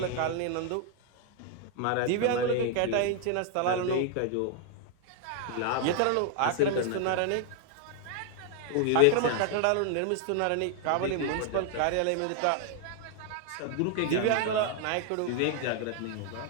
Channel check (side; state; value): both; different; correlation 0.00